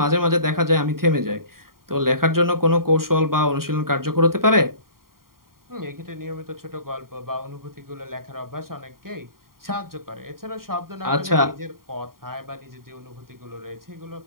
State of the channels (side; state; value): left; late; 0.92 ms